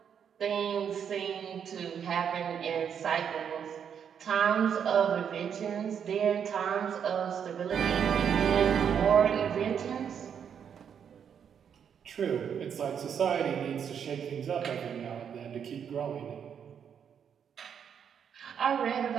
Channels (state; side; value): quieter; left; 7.9 dB